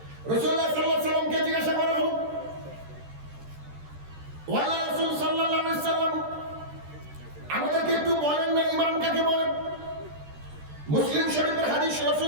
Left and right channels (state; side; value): late; left; 13 ms